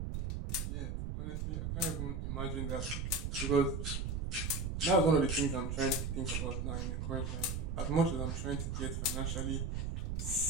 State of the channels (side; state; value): right; noise; rumble, 2 dB below the sound